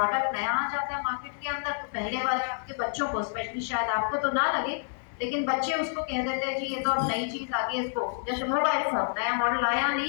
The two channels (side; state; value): right; silent; digital silence